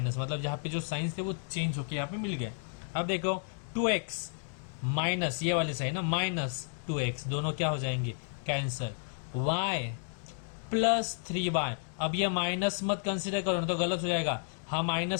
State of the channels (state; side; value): silent; right; digital silence